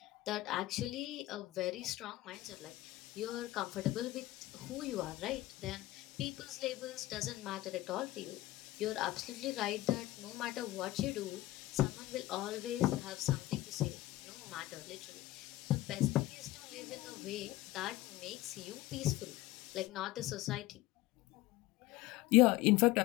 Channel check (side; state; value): right; quieter; 16.9 dB